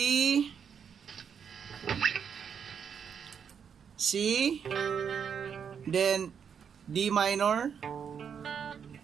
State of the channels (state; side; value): quieter; left; 7.3 dB